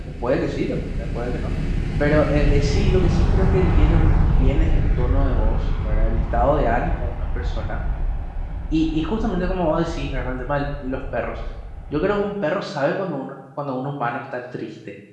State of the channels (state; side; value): identical; both; correlation 1.00